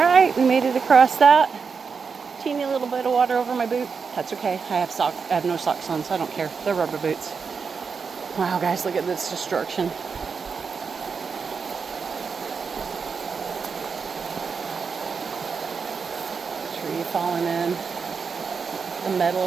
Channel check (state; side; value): quieter; left; 5.5 dB